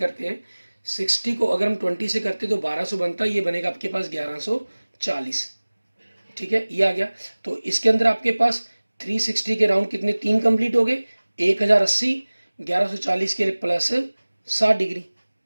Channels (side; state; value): both; inverted; correlation -1.00